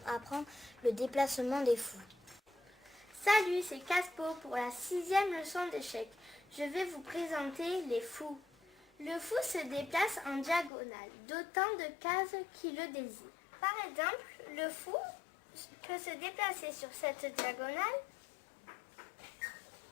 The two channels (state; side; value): drops out; right; at 10.7 s